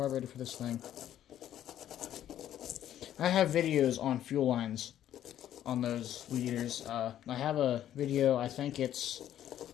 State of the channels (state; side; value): quieter; right; 11.4 dB